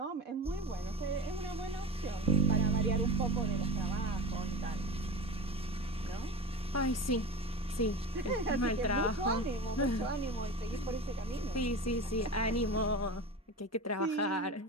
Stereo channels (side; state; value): both; normal; correlation 0.29